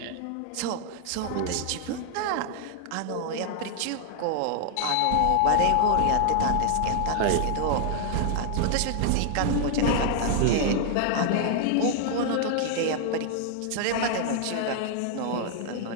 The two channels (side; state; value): both; different; correlation 0.00